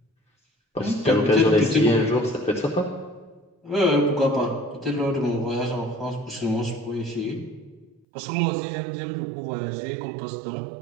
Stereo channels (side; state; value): left; drops out; at 8.0 s